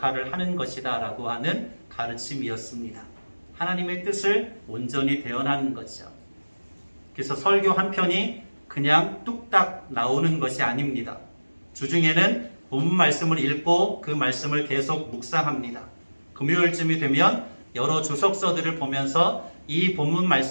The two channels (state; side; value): inverted; both; correlation -1.00